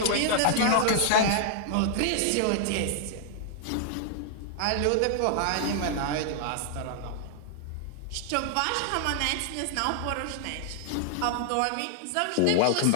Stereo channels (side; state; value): both; different; correlation -0.01